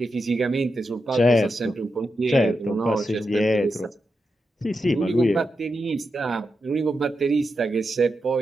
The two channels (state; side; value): normal; both; correlation 0.87